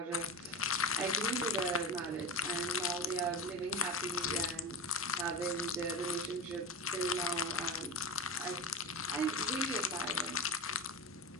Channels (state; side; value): normal; both; correlation 0.23